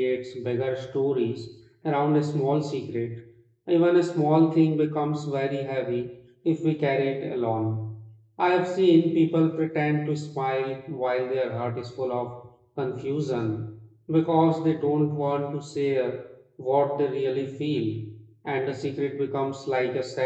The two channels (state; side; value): identical; both; correlation 1.00